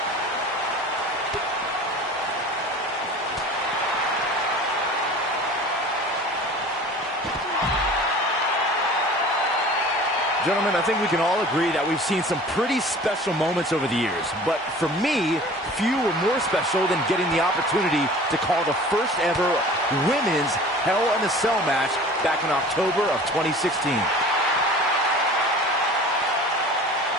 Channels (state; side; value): normal; both; correlation 0.43